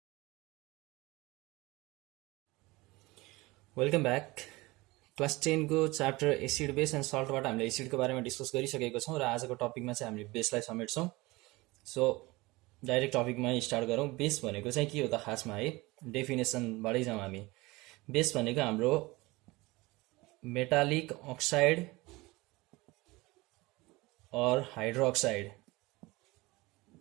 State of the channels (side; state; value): left; quieter; 21.9 dB